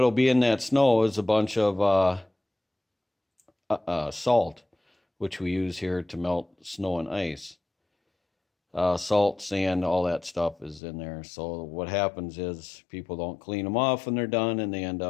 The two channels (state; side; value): drops out; right; at 10.8 s